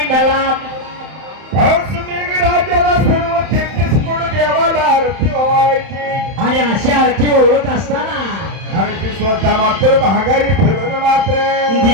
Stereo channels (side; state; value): left; late; 31 ms